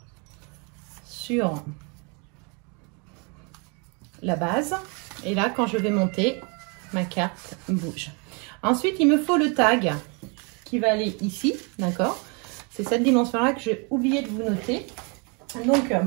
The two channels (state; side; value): quieter; left; 33.6 dB